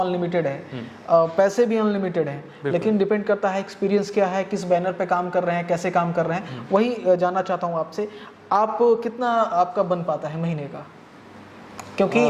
अनलिमिटेड है, पैसे भी अनलिमिटेड हैं, लेकिन डिपेंड करता है एक्सपीरियंस क्या है, किस बैनर पे काम कर रहे हैं, कैसे काम कर रहे हैं। वही जानना चाहता हूँ आपसे, आप कितना आपका बन पाता है महीने का? क्योंकि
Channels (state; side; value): identical; both; correlation 1.00